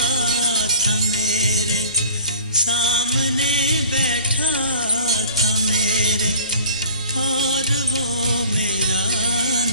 था मेरे, सामने बैठा था मेरे, और वो मेरा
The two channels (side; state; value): both; inverted; correlation -0.47